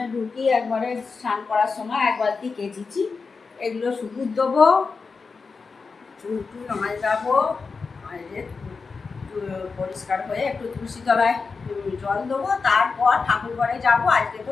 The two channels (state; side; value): quieter; right; 4.7 dB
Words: ঢুকি একবারে স্নান করার সময় 1 বালতি কেচেছি। এগুলো শুকুর দেবো, চুল যাবো, পরিষ্কার হয়ে একটু তুলসী তলায় জল দেবো, তারপর ঠাকুর ঘরে যাবো। আজকে তো